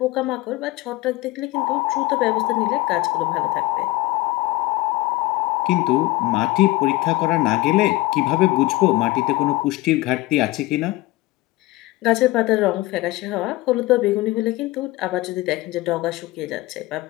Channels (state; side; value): quieter; right; 19.0 dB